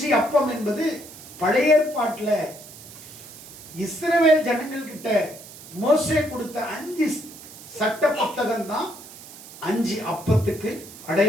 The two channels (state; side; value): noise; right; hiss, 17 dB below the sound